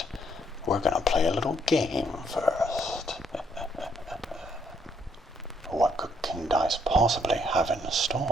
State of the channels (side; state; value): both; normal; correlation 0.70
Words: We're gonna play a little game first. What could King Dice possibly have in